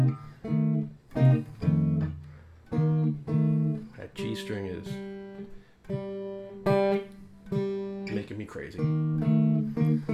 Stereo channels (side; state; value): both; identical; correlation 1.00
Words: that G string is making me crazy.